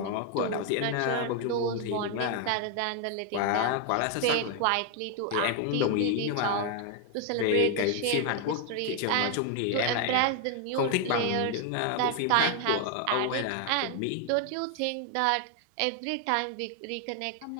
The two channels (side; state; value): both; different; correlation 0.00